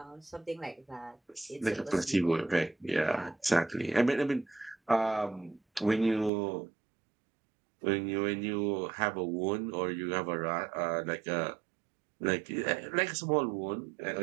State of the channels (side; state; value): left; drops out; at 6.3 s